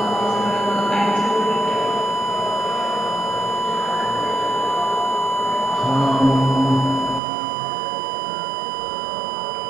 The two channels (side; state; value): left; drops out; at 7.2 s